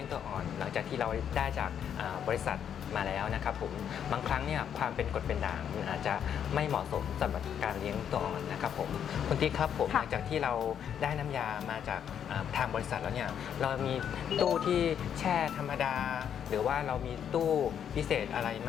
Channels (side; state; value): right; quieter; 8.7 dB